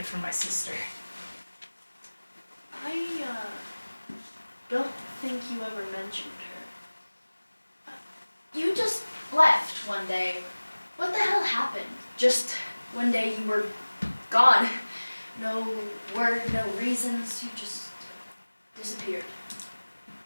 from my sister. I don't think you ever mentioned her. You just left one day. What the hell happened? Just one day you were gone. No word, no reasons, you just disappeared.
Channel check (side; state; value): both; inverted; correlation -1.00